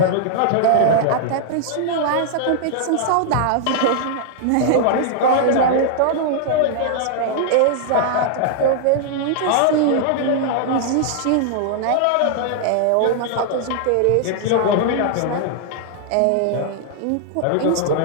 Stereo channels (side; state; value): both; different; correlation -0.01